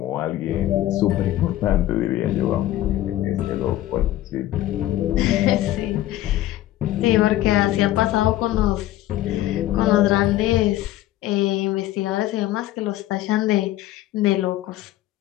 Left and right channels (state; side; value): quieter; right; 14.5 dB